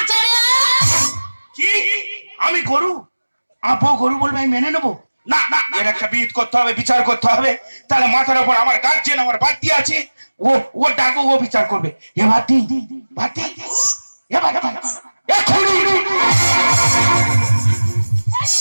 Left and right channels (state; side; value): inverted; both; correlation -1.00